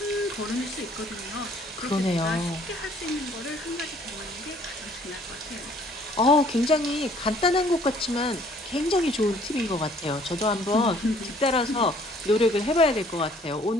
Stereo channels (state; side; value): normal; both; correlation 0.58